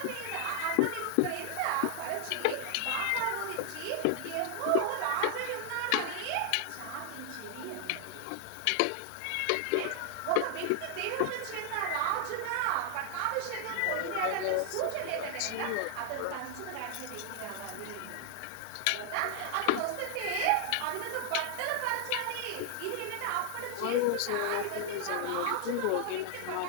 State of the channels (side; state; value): both; different; correlation 0.00